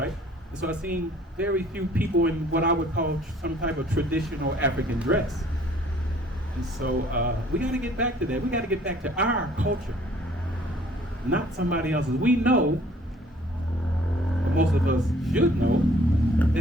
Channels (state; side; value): normal; both; correlation 0.56